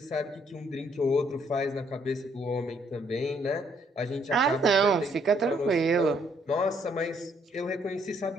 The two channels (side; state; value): both; normal; correlation 0.68